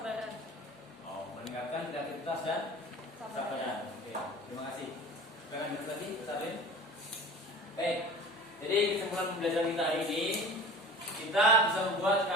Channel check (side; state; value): both; normal; correlation 0.40